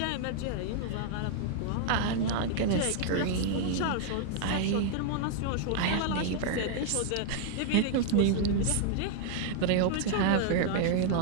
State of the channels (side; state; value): both; different; correlation 0.00